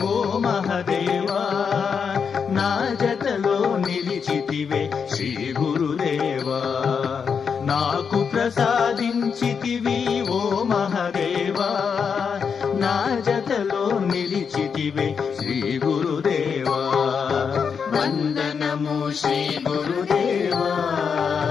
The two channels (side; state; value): right; quieter; 6.3 dB